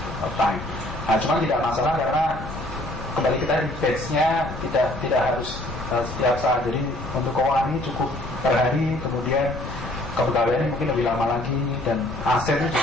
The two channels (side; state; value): left; noise; rumble, 11 dB below the sound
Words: time. Nah, cuman tidak masalah karena kembali kita di batch-nya tidak harus setiap saat. Jadi untuk keuangan ini cukup per hari, kemudian kepegawaian ini mungkin lebih lama lagi, dan asetnya